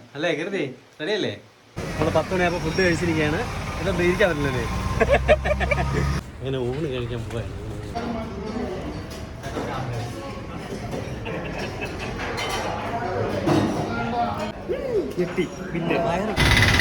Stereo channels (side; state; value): both; identical; correlation 1.00